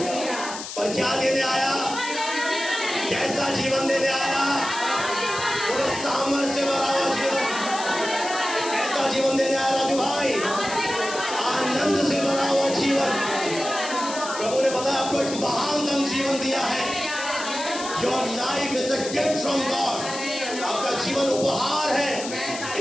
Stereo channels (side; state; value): left; noise; hiss, 9 dB below the sound